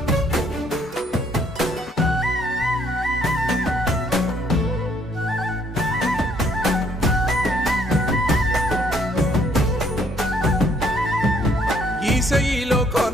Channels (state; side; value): normal; both; correlation 0.66